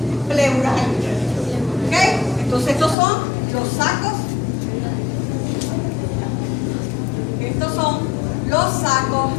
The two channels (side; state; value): right; drops out; at 3.0 s